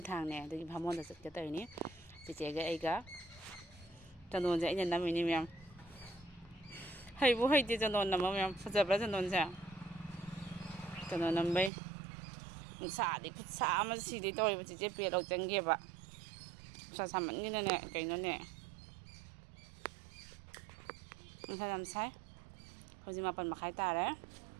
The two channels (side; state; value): left; drops out; at 11.7 s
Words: ꯊꯥꯡꯅꯦ ꯑꯗꯨꯒꯤ ꯚꯥꯃꯣꯟꯗ ꯆꯠꯀꯦ ꯇꯧꯔꯤꯅꯤ ꯆꯤꯆꯦꯒ ꯑꯩꯒ ꯆꯟꯗꯣꯟꯁꯦ ꯑꯩꯅ ꯅꯝꯃꯤꯅꯤ ꯃꯌꯥꯝ ꯍꯩꯕꯨ ꯍꯩꯇꯦ ꯆꯟꯗꯣꯟ ꯅꯝꯕ ꯃꯌꯥꯝ ꯐꯖꯕ꯭ꯔꯥ ꯆꯟꯗꯣꯟꯁꯦ ꯆꯟꯗꯣꯟ ꯅꯝꯕꯩ ꯅꯨꯡꯁꯥꯗꯤ ꯈꯨꯠꯁꯥ ꯑꯃ ꯁꯤꯗꯩ ꯇꯧꯔꯤꯕ ꯆꯤꯆꯦ ꯄꯦꯠ ꯂꯧ ꯆꯪꯒꯦꯕ ꯅꯨꯡꯁꯥ ꯁꯥꯃꯟꯒꯤꯅꯅꯦ ꯀꯩꯅꯣꯅꯦ ꯅꯨꯡꯁꯥ ꯌꯥꯝ ꯁꯥꯏ ꯍꯧꯖꯤꯛ 8:30 ꯇꯥꯔꯦ